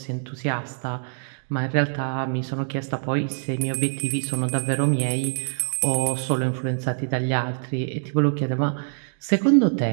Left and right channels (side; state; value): left; silent; digital silence